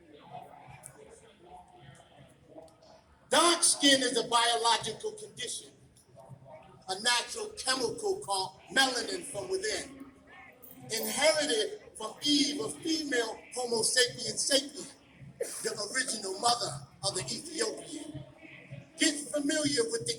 Dark skin is a biological condition, a natural chemical called melanin from within, inherited from Eve, a female Homo sapiens sapien, the original mother of the Ethiopian. Get familiar with the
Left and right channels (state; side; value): identical; both; correlation 1.00